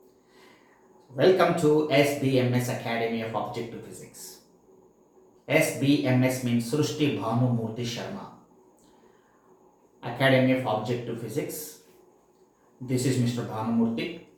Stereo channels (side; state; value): both; identical; correlation 1.00